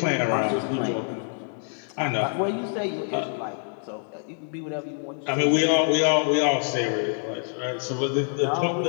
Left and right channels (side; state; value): right; silent; 61 dB below the other